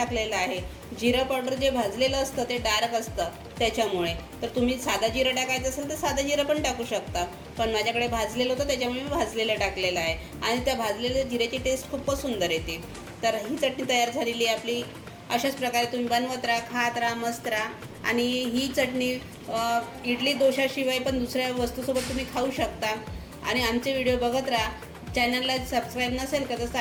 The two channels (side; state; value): both; identical; correlation 1.00